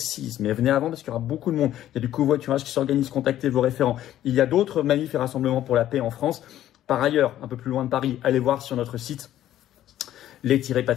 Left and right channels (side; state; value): right; quieter; 12.5 dB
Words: Mais venez avant parce qu'il y aura beaucoup de monde. Il y a du covoiturage qui s'organise, contactez vos référents. Il y a d'autres manifs et rassemblements pour la paix en France. Par ailleurs, un peu plus loin de Paris, allez voir sur notre site